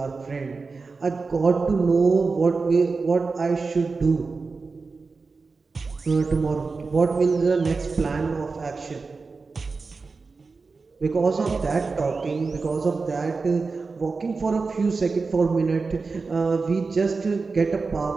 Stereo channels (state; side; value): quieter; left; 4.3 dB